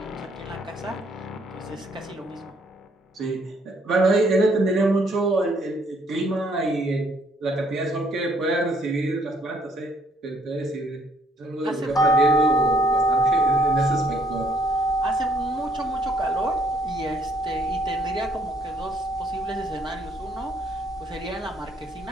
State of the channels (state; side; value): normal; both; correlation 0.67